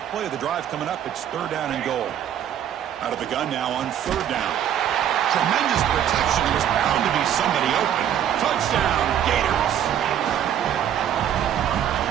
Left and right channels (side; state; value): left; quieter; 10.0 dB